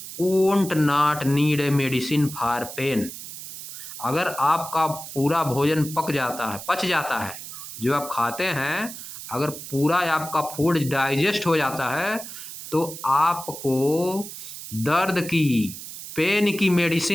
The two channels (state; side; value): noise; right; hiss, 11 dB below the sound